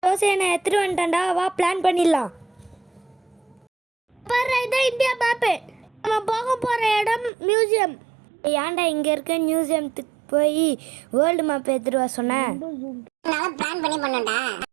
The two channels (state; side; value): drops out; left; at 7.3 s